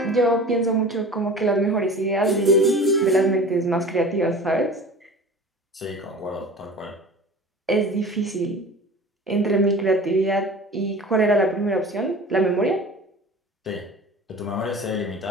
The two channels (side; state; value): both; normal; correlation 0.39